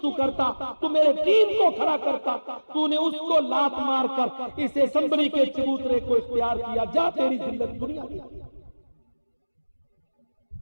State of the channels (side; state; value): both; inverted; correlation -1.00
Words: تو کرتا، تو میرے دین کو کھڑا کرتا، تو نے اس کو لات مار کر اس اسمبلی کے چبوترے کو اختیار کیا، جا تیری ذلت دنیا دی۔